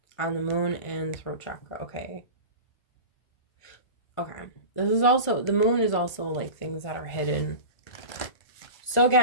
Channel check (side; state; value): right; late; 1.4 ms